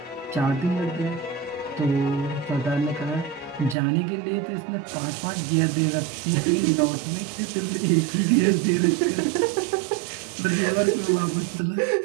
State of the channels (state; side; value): drops out; left; at 3.8 s